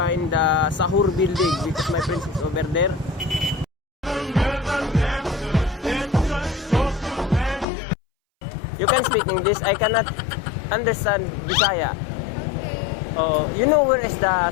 the Sahur building because my friend is over there. You can speak English. I cannot understand Bisaya. Oh, you know where is the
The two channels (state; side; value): drops out; right; at 7.7 s